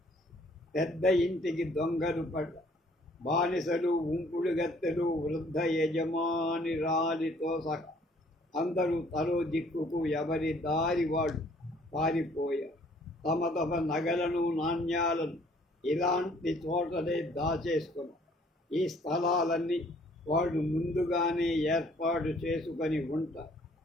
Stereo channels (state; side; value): normal; both; correlation 0.60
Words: పెద్ద ఇంటికి దొంగలు పడ్డ, బానిసలు, ఉంపుడు గత్తెలు, వృద్ధ యజమాని రాలితో సహా అందరూ తలో దిక్కుకు ఎవరి దారి వాడు పారిపోయారు. తమ తమ నగలను, నాణ్యాలను ఇలాంటి చోటనే దాచేసుకున్నారు. ఈ స్థలాలన్నీ వాళ్ళు ముందుగానే ఏర్పాటు చేసుకొని ఉంటారు.